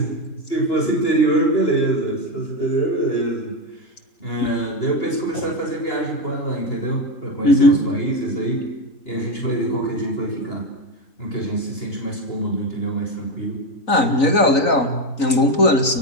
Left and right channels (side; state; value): right; late; 3.9 ms